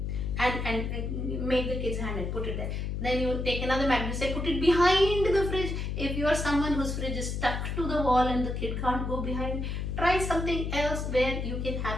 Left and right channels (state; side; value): noise; left; hum, 3 dB below the sound